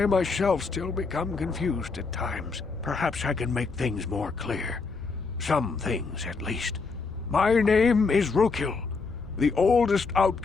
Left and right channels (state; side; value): quieter; right; 4.4 dB